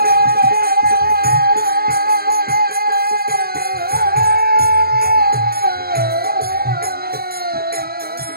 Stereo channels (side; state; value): left; late; 0.44 ms